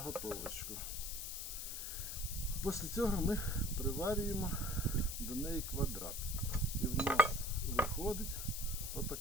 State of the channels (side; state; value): left; noise; hiss, 5 dB below the sound